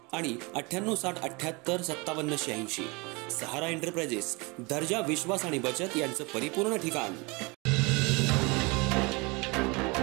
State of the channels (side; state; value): left; quieter; 27.4 dB